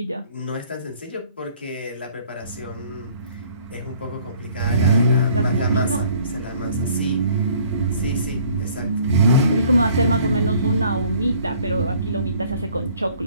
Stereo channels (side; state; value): both; inverted; correlation -0.57